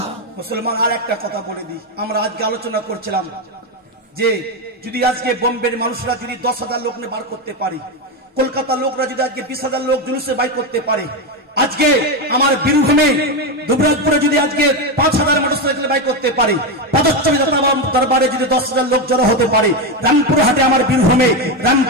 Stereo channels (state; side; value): normal; both; correlation 0.11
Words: মুসলমান, আর একটা কথা বলে দিই, আমরা আজকে আলোচনা করছিলাম যে যদি আজকে বোম্বের মানুষরা যদি 10,000 লোক নিয়ে বার করতে পারে, কলকাতার লোকরা যদি আজকে 20,000 লোক জুলুসে বাইর করতে পারে, আজকে আমার বীরভূমে দুবরাজপুরে যদি আজকে 5,000 মোটরসাইকেল বাইর করতে পারে, পদচ্চবী দরবারে যদি 10,000 লোক জড়ো হতে পারে, রামপুরহাটে আমার বীরভূমে